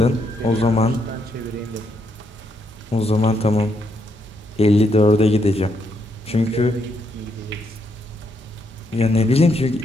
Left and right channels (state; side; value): normal; both; correlation 0.77